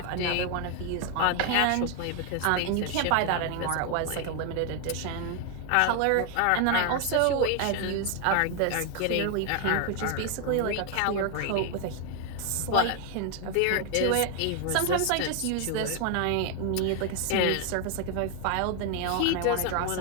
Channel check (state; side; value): different; both; correlation 0.00